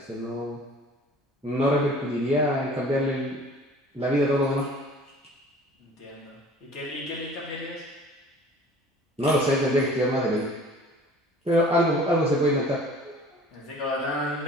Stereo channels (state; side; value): normal; both; correlation 0.47